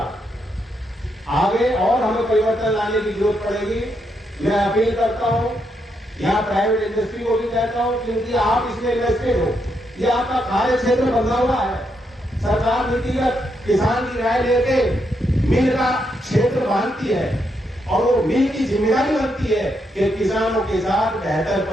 आगे और हमें परिवर्तन लाने की जरूरत पड़ेगी। मैं अपील करता हूं, यहाँ प्राइवेट इंडस्ट्री को भी कहता हूं, क्योंकि आप इसमें इन्वेस्टेड हो, ये आपका कार्य क्षेत्र बदला हुआ है। सरकार नीतिगत किसान की राय लेके मिल का क्षेत्र बांधती है, और वो मिल की जिम्मेदारी बनती है कि किसानों के साथ बेहतर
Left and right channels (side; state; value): both; normal; correlation 0.79